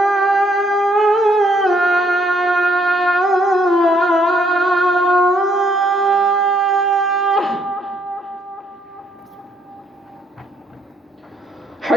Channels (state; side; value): normal; both; correlation 0.68